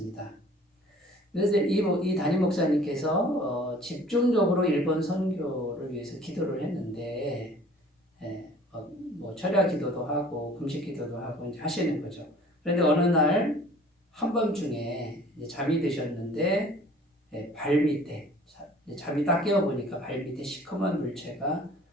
그래서 이 담임 목사님께서 집중적으로 일본 선교를 위해서 기도를 했는데 뭐 철야 기도도 하고 금식 기도도 하고 이제 하시는 거죠. 그런데 어느 날 한밤중에 잠이 드셨는데 발 밑에 잠이 딱 깨어보니까 발 밑에 시커먼 물체가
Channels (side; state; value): both; normal; correlation 0.50